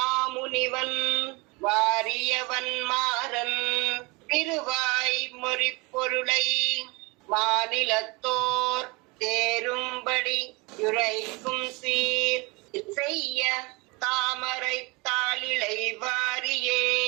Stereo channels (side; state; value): left; quieter; 26.4 dB